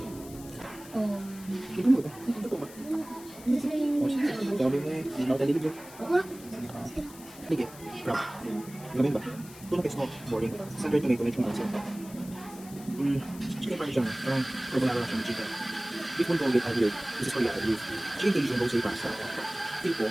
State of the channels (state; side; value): noise; left; hiss, 18 dB below the sound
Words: mo ito? Ito ba? Sabi mo eh, hindi na ako talilib. Sige, crap. Gamin ba? Ito na pesto, boring. Sandwich tomato, medyo mga sila. Chicken parmesan, parang carbonara lang siya ng chicken. Beef bulgogi, agilid. This is for yata, beef. Chicken Cajun, rosé pasta. Tipo,